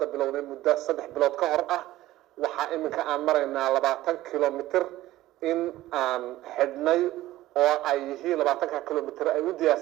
bilownay muddo 3 bilood ka hor ah waxa iminka aan maraynaa 20 kilomitir in aan xidhnay oo ay yihiin 20 kilomitir ay u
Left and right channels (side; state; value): left; quieter; 15.8 dB